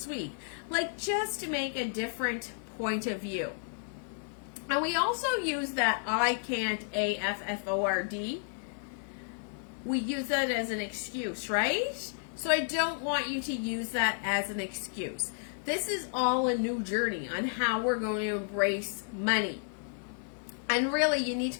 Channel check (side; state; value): right; silent; digital silence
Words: week? Like, just to make a different point of view. And we also use that I can't, A-F-F-O-R-D. We use that as an excuse, right? So I don't want you to use that as an excuse. This is all a new journey on how we're going to embrace money. And really, you need to